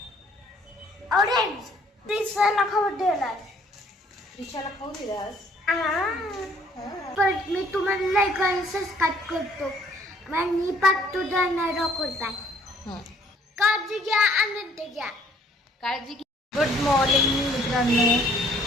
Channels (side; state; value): both; normal; correlation 0.61